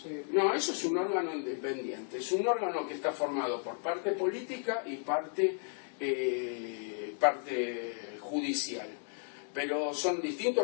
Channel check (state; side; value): silent; right; 55 dB below the other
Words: No, eso es un órgano independiente, es un órgano que está formado por parte política y parte judicial, pero son